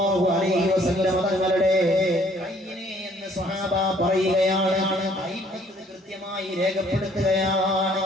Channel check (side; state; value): both; normal; correlation 0.61